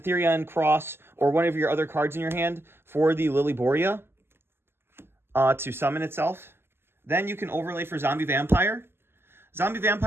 Therion Cross or one of your other cards in your hand for the Lilyboria to summon itself. Then you can overlay for Zombie Vampire. Zombie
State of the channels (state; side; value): late; left; 0.11 ms